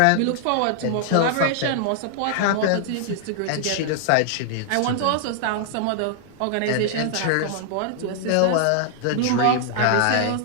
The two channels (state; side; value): different; both; correlation -0.01